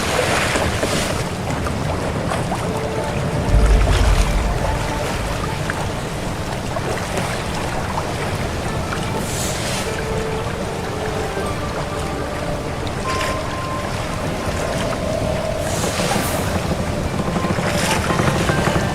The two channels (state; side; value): identical; both; correlation 1.00